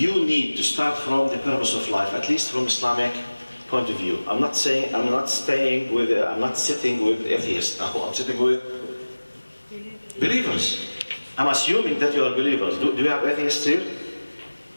need to start from the purpose of life, at least from Islamic point of view. I'm not sitting with atheists now. I'm sitting with believers. I'm assuming that you are believers. Do you have atheists here?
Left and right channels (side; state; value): both; inverted; correlation -1.00